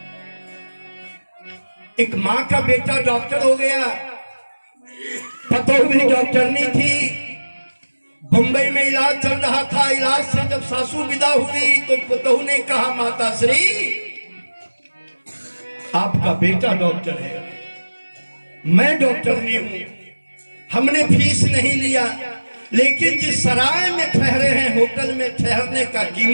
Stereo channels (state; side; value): inverted; both; correlation -1.00